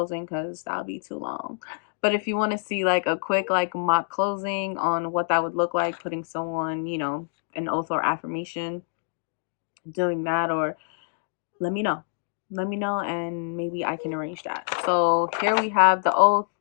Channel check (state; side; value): silent; right; digital silence